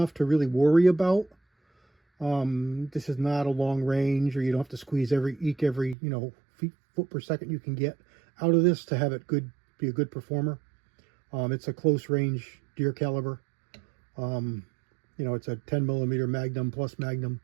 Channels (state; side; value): drops out; left; at 6.0 s